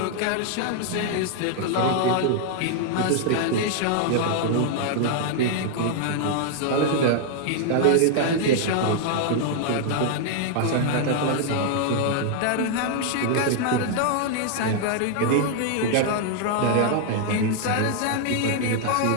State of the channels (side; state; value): both; different; correlation 0.00